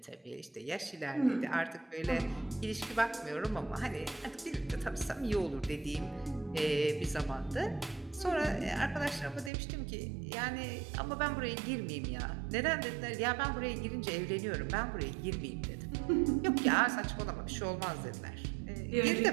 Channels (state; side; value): drops out; left; at 9.5 s